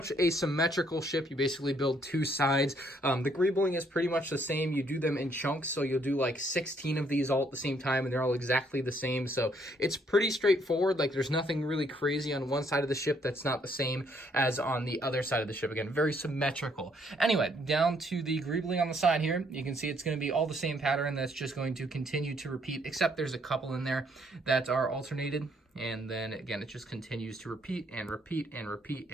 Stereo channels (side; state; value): both; normal; correlation 0.68